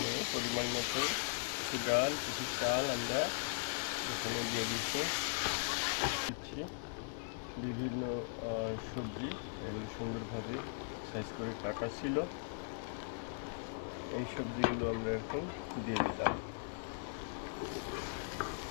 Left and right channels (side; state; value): right; silent; digital silence